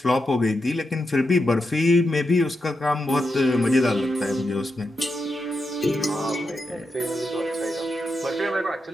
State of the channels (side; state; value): both; normal; correlation 0.86